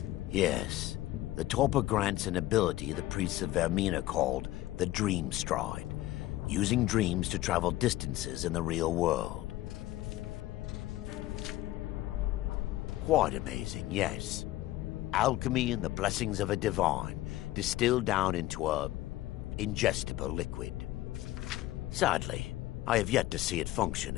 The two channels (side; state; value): right; quieter; 16.0 dB